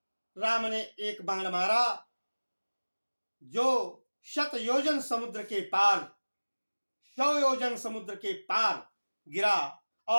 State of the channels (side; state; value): both; inverted; correlation -1.00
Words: राम ने एक बाण मारा, जो 100 योजन समुद्र के पार, 100 योजन समुद्र के पार गिरा,